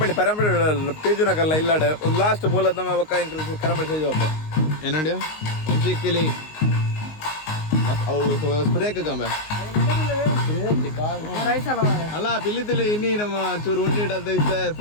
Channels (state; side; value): late; right; 19 ms